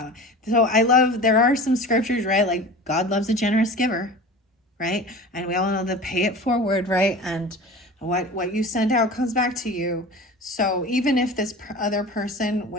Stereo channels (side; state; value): both; normal; correlation 0.36